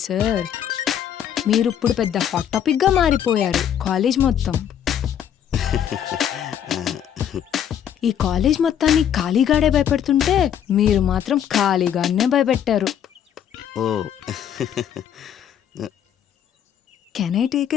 సార్? మీరు ఇప్పుడు పెద్ద హాట్ టాపిక్ గా మారిపోయారు కాలేజ్ మొత్తం. ఈ కాలేజ్ మొత్తాన్ని ఖాళీగాడే భయపెడుతుంటే మీరు మాత్రం ఖాళీగానే భయపెట్టారు. Oh can I take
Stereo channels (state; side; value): quieter; right; 9.5 dB